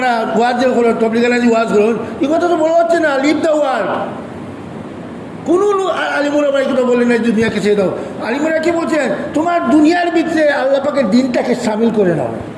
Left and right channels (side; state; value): both; identical; correlation 1.00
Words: ওয়াজ যে করেন, তবলিগালাজি ওয়াজ করেন, এই কথা তো বলা হচ্ছে না, লিভ দ্য ওয়ার্ড। কোনো আলিমুল আমরা এই কথা বললেন না দুনিয়াকে ছেড়ে দাও। আলিমুরা কি বলছেন? তোমার দুনিয়ার ভিতরে আল্লাহ পাকের দিনটাকে সামিল করে নাও।